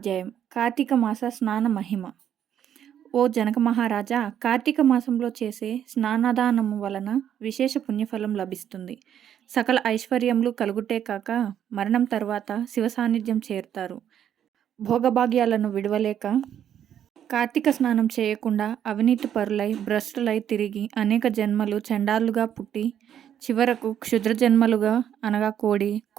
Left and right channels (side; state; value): left; quieter; 9.8 dB